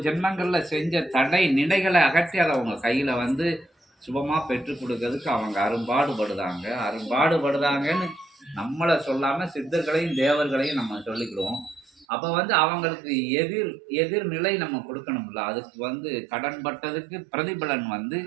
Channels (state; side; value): drops out; left; at 12.1 s